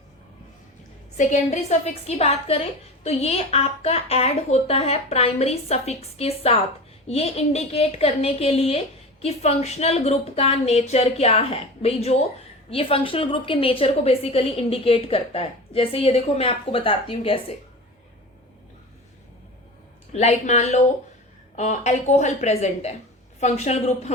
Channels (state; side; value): normal; both; correlation 0.31